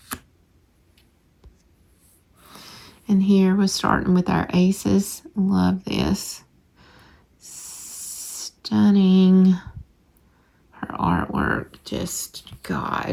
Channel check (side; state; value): both; identical; correlation 1.00